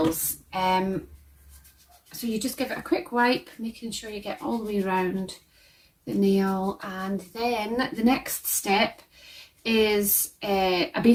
So you just give it a quick wipe, making sure you get all the way around the nail, and then the next step is a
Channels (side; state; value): both; identical; correlation 1.00